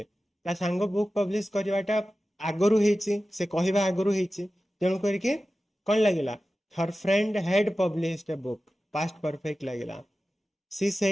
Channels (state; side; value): normal; both; correlation 0.95